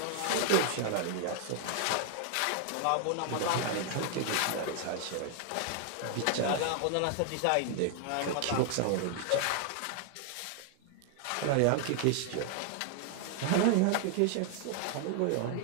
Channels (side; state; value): both; different; correlation 0.00